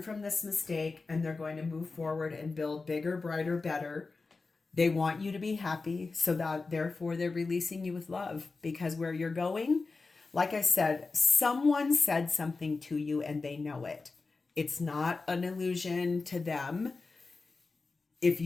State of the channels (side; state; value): right; quieter; 4.0 dB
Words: from this mistake, and they're going to move forward and build bigger, brighter, better. They want you to be happy, so that therefore they're releasing you with love, because where you're going, like I said, someone said something to you and they know it. It's not an illusion to them. If